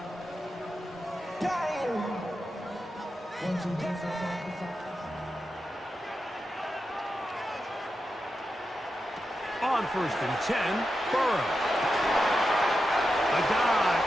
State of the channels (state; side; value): normal; both; correlation 0.89